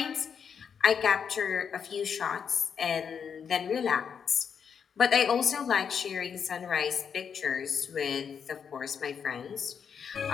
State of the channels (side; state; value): right; quieter; 7.0 dB